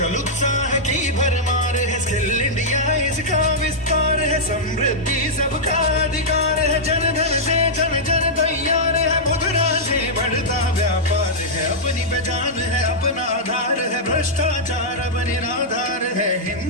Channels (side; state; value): both; normal; correlation -0.08